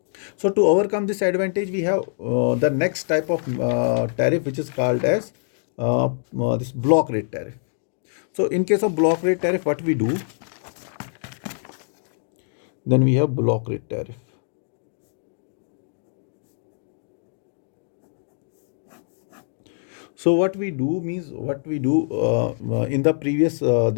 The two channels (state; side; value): silent; right; digital silence